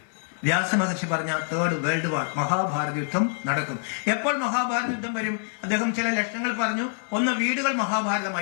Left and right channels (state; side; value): silent; right; 57 dB below the other